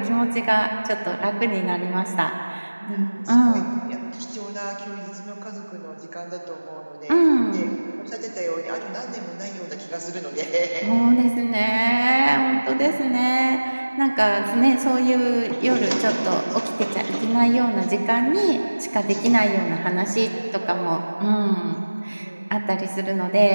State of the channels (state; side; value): inverted; both; correlation -1.00